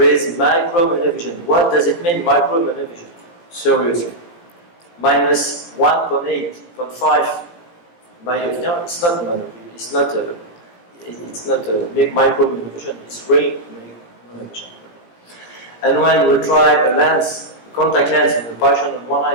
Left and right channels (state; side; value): late; right; 18 ms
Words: is micro monovision. What does it mean, micro monovision? Seriously. Minus 1.8.5 myopia, it's not monovision, it's not a big micro monovision, it's real monovision. And when we try a lens, a contact lens in a patient on one